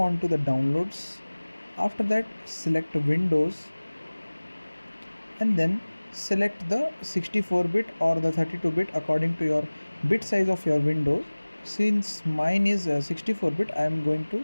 to the downloads. After that select Windows and then select the 64-bit or the 32-bit according to your bit size of your Windows. Since mine is 64-bit, I am going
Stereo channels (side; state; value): both; inverted; correlation -1.00